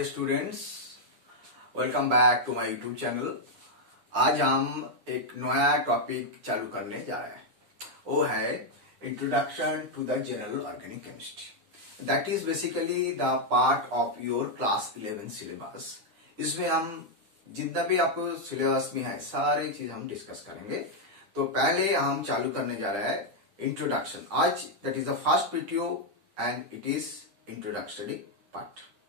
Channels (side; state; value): left; late; 9.9 ms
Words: students, welcome back to my YouTube channel. आज हम एक नया टॉपिक चालू करने जा रहे हैं। वो है introduction to the general organic chemistry. That is basically the part of your class 11 syllabus. इसमें हम जितना भी आपको सिलेबस में है सारी चीज हम डिस्कस करेंगे। तो पहले हम चालू करने जा रहे हैं इंट्रोडक्शन। आज that is the first video and it is introductory part.